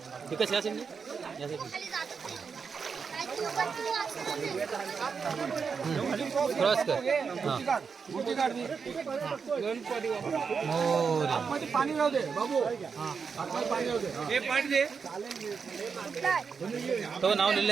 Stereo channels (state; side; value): quieter; left; 5.7 dB